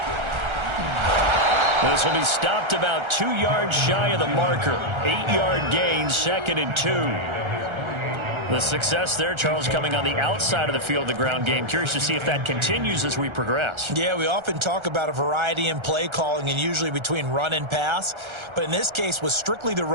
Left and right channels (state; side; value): late; left; 1.3 ms